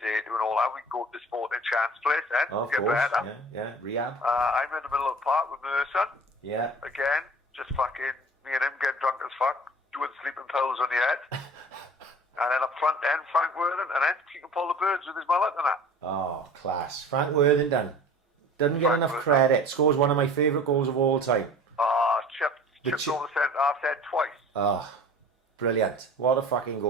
doing all that, we can go to the Sporting Chance place then, Oh, of get course. better. Yeah, rehab. I'm in the middle of the park with Merson. Yeah. Again, just fucking, me and him get drunk as fuck, doing sleeping pills on the head. And then up front then, Frank Worthing, and then he can pull the birds with his mullet and that. Oh, class. Frank Worthington. Doesn't get enough credit. Scores one of my favourite goals of all time. Chipped over the centre half head twice. Oh, brilliant. What a fucking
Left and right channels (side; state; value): both; normal; correlation 0.43